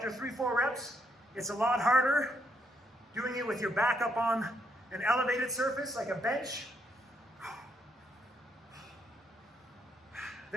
3-4 reps, it's a lot harder doing it with your back up on an elevated surface like a bench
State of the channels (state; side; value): normal; both; correlation 0.75